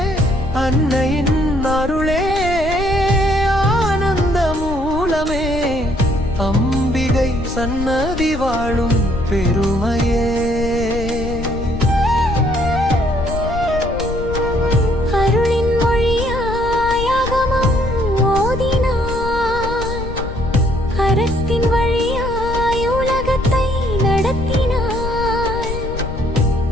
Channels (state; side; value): noise; left; rumble, 7 dB below the sound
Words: அன்னையின் அருளே ஆனந்த மூலமே, அம்பிகை சன்னதி வாழும் பெருமையே.